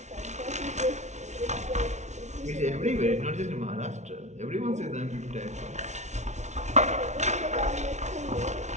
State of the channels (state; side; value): late; left; 0.33 ms